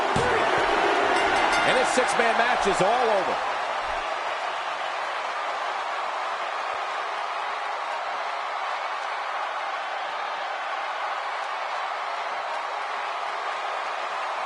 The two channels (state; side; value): identical; both; correlation 1.00